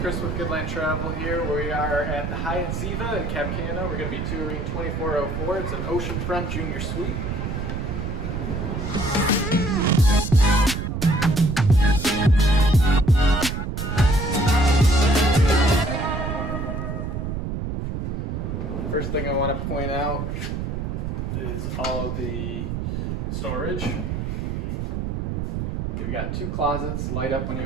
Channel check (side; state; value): right; noise; rumble, 3 dB below the sound